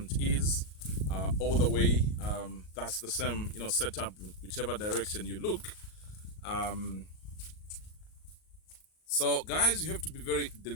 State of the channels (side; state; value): right; late; 38 ms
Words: is, all the way. That's the same setup whichever direction you look. So guys, you have to be very